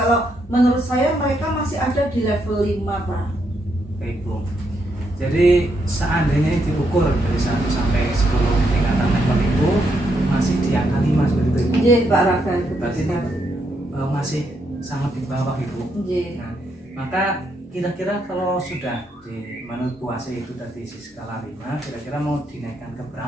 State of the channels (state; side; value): normal; both; correlation 0.78